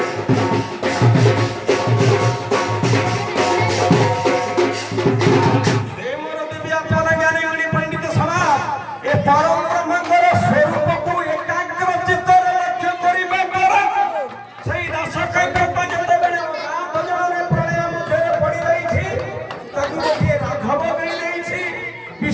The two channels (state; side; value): identical; both; correlation 1.00